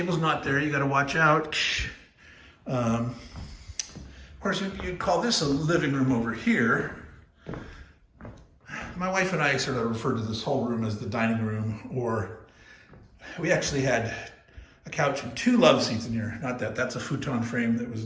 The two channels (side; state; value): both; identical; correlation 1.00